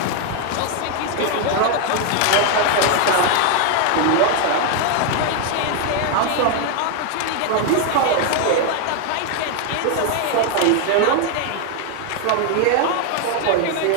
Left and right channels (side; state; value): both; different; correlation 0.01